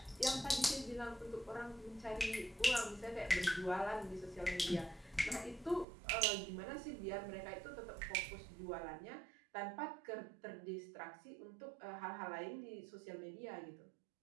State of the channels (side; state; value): left; drops out; at 5.9 s